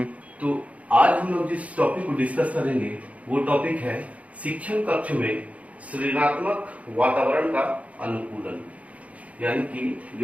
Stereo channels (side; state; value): left; late; 0.067 ms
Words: तो आज हम लोग जिस टॉपिक को डिस्कस करेंगे वो टॉपिक है शिक्षण कक्ष में सृजनात्मक वातावरण का अनुकूलन। यानी कि